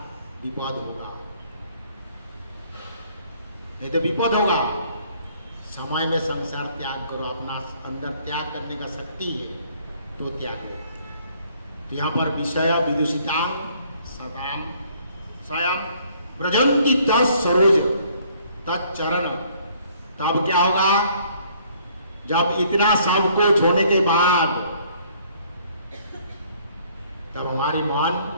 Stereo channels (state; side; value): inverted; both; correlation -0.62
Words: विपद होगा, नहीं तो विपद होगा। समय में संसार त्याग करो, अपना अंदर त्याग करने का शक्ति है तो त्यागो। तो यहाँ पर विषय विदुषिता सदाम स्वयं ब्रजंती तरोज तत्चरण। तब क्या होगा, जब इतना सब कुछ होने के बाद तब हमारी मान